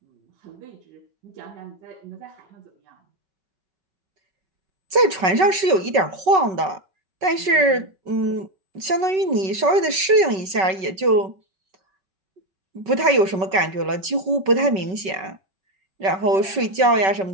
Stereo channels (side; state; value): left; late; 5.3 ms